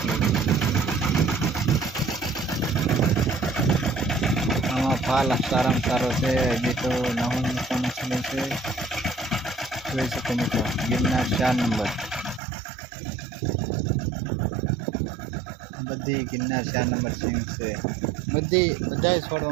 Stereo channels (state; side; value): drops out; left; at 12.4 s